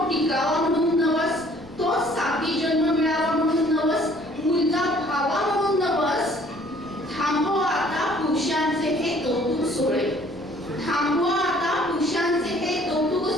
टिकावा म्हणून नवस, तो साती जन्म मिळावा म्हणून नवस, मुलगा भावा म्हणून नवस. थांबवा आता पुरुषांचे हे कौतुक सोहळे, थांबवा आता पुरुषांचे हे कौतुक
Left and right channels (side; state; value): left; noise; rumble, 24 dB below the sound